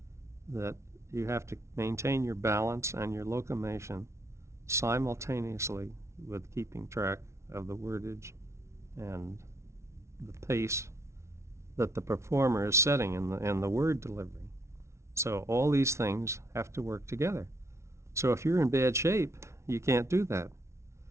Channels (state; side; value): late; left; 0.13 ms